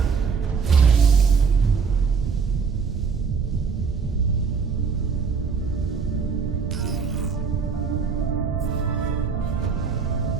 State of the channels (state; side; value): quieter; left; 5.6 dB